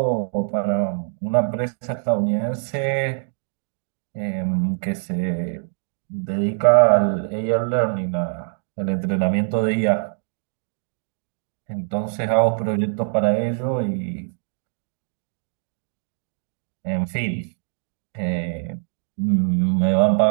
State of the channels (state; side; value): silent; left; 58 dB below the other